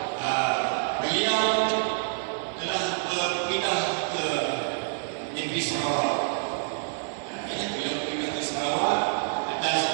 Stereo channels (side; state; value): left; silent; 60 dB below the other